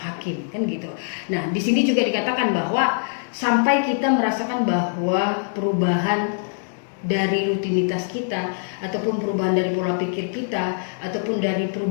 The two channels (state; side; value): silent; right; digital silence